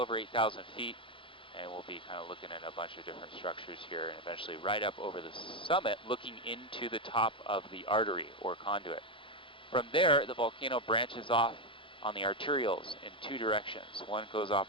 8,000 feet, and we'll be kind of looking at a bunch of different structures here, and eventually right up over the summit, looking into the top of the artery or conduit. From there, the volcano branches off on the arterioles in 2 directions. One goes off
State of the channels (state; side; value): late; right; 0.25 ms